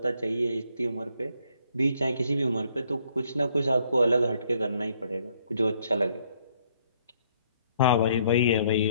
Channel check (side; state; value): both; inverted; correlation -0.68